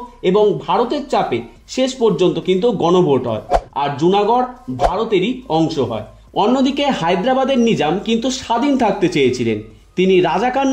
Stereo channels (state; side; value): identical; both; correlation 1.00